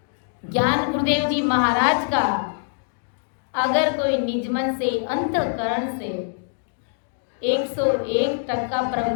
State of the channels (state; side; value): silent; right; digital silence